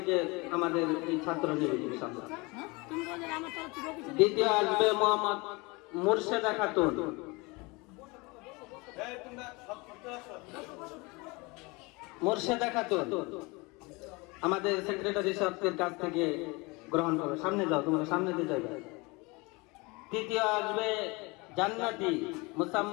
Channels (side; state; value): right; quieter; 25.9 dB